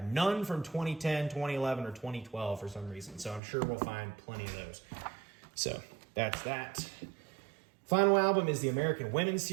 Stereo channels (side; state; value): left; drops out; at 3.4 s